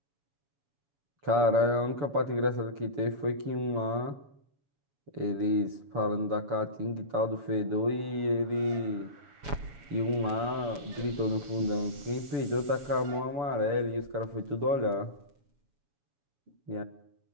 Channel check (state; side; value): late; left; 6.8 ms